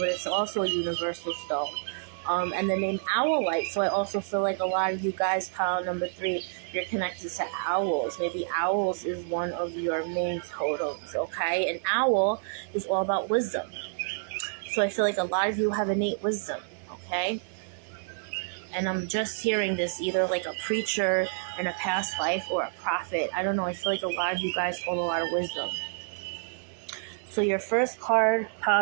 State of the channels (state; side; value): silent; left; digital silence